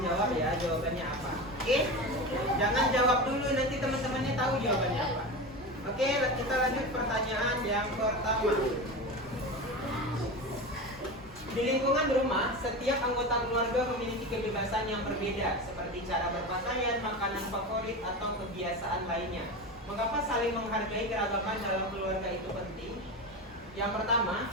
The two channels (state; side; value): normal; both; correlation 0.25